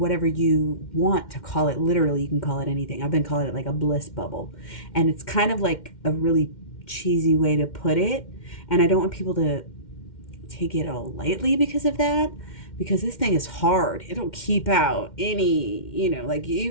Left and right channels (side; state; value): right; late; 2.1 ms